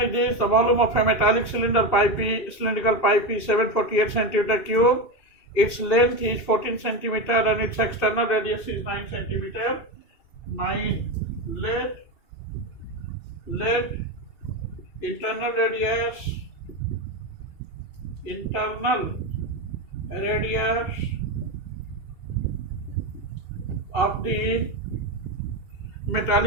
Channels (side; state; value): right; late; 2.7 ms